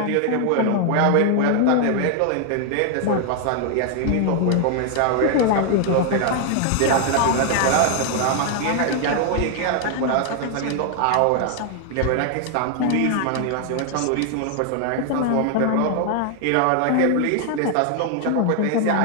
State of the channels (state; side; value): different; both; correlation 0.00